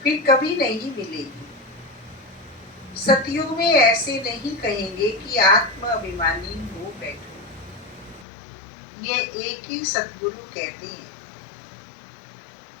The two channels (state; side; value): drops out; right; at 8.2 s